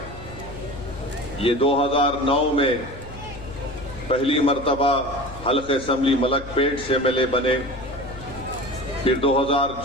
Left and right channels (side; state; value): left; noise; hum, 14 dB below the sound